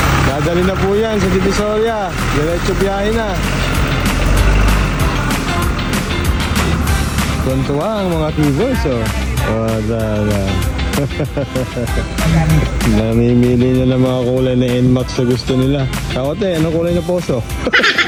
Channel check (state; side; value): identical; both; correlation 1.00